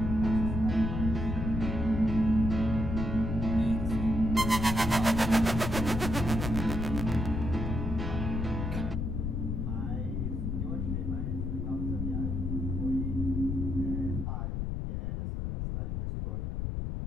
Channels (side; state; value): left; noise; rumble, 2 dB below the sound